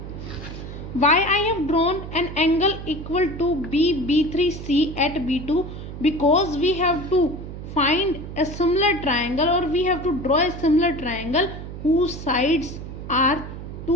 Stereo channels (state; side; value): noise; right; hum, 10 dB below the sound